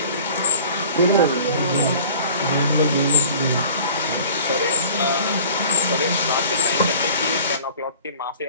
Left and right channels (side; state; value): both; inverted; correlation -0.46